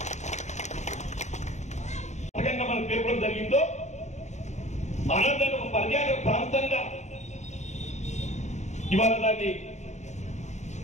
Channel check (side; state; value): right; late; 0.34 ms